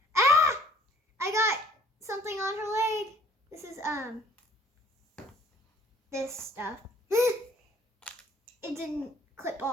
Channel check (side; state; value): both; normal; correlation 0.57